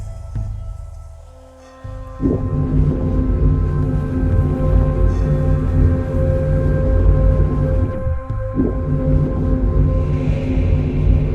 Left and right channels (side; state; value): both; identical; correlation 1.00